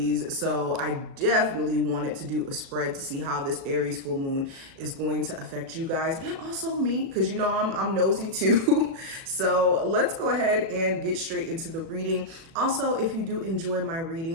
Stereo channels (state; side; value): late; left; 36 ms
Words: so I definitely wanted to do a spread to see how this Aries full moon is going to affect you guys and also me, because you know I'm nosy too. So let's go ahead and get straight into the reading. Also, if you do enjoy my